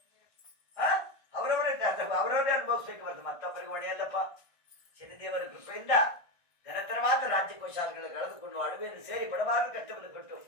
ಅನುಭವಿಸ್ಬೇಕು ಬರ್ತದೆ, ಮತ್ತೊಬ್ಬರಿಗೆ ಹೊಡೆಯಲ್ಲಪ್ಪ. ಶನಿದೇವರ ಕೃಪೆಯಿಂದ ಘನತರವಾದ ರಾಜ್ಯಕೋಶಾಲೆಗಳು ಕಳೆದುಕೊಂಡು ಅಡವಿಯನ್ನು ಸೇರಿ ಬಡಬಾರದ ಕಷ್ಟವನ್ನು ಕೊಟ್ಟು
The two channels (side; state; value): right; late; 1.5 ms